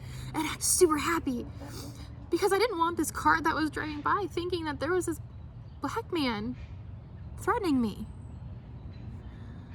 and act super happy, because I didn't want this car that was driving by thinking that there was this black man threatening me.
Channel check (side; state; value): both; identical; correlation 1.00